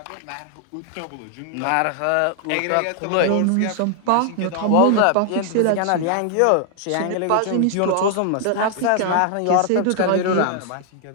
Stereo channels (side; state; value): both; different; correlation 0.00